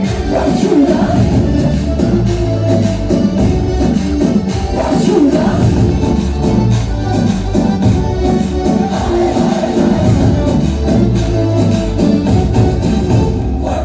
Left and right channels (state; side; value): identical; both; correlation 1.00